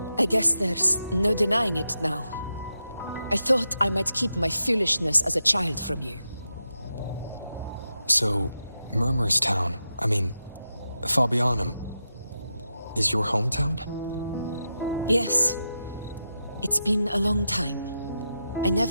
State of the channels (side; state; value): both; inverted; correlation -0.88